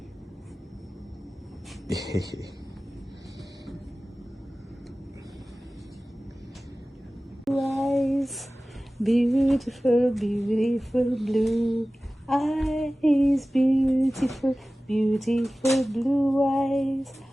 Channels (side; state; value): both; normal; correlation 0.97